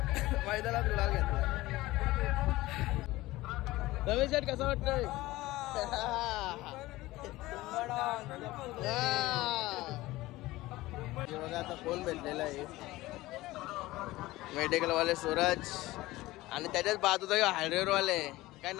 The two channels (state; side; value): quieter; right; 18.4 dB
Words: मैदानात गुलाल घेतला रमेश शेठ कसं वाटतंय बघा आता कोण भेटलेला आहे मेडिकल वाले सूरज आणि त्याच्याच बाजूचा हायड्रोर वाले काय